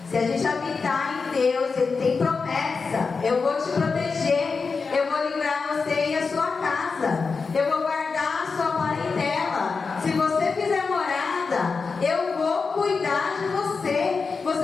Se a gente habitar em Deus, Ele tem promessa. Eu vou te proteger, eu vou livrar você e a sua casa, eu vou guardar a sua parentela. Se você fizer morada, eu vou cuidar de você.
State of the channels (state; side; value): quieter; right; 4.8 dB